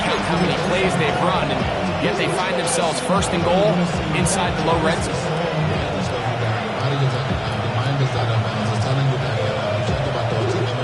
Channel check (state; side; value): identical; both; correlation 1.00